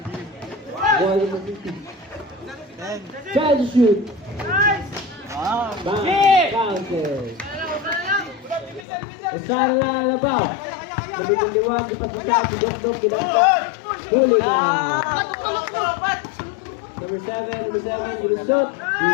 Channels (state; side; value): drops out; right; at 8.8 s